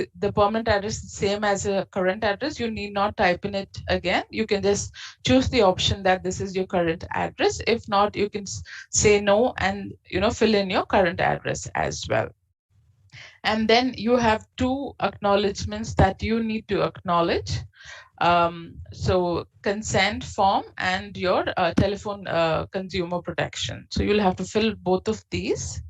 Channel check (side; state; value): both; identical; correlation 1.00